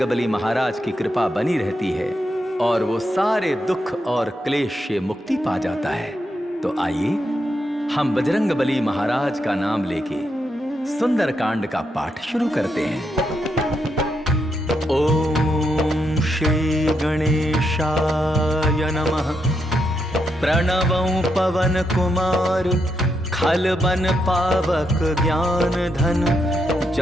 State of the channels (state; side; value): normal; both; correlation 0.81